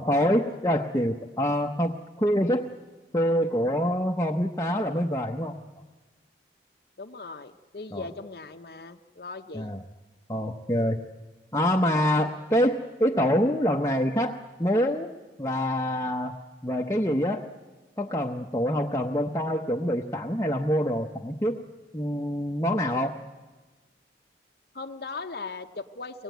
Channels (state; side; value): normal; both; correlation 0.67